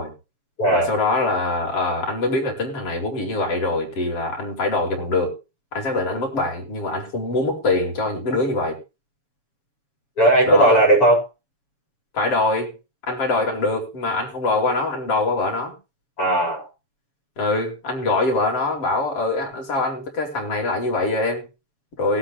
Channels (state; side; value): late; right; 7.1 ms